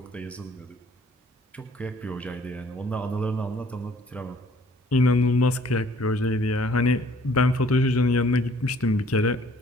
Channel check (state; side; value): normal; both; correlation 0.58